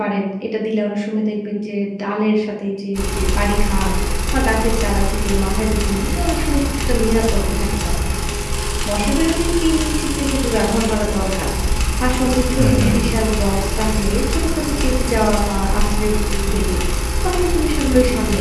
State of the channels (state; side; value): identical; both; correlation 1.00